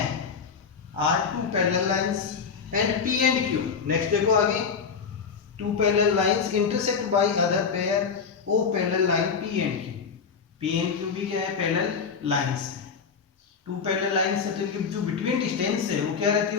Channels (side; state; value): right; quieter; 5.9 dB